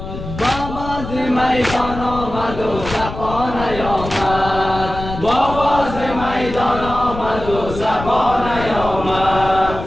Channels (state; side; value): noise; left; rumble, 9 dB below the sound